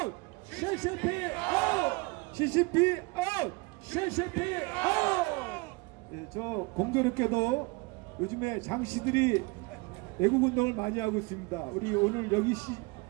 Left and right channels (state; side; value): quieter; left; 26.5 dB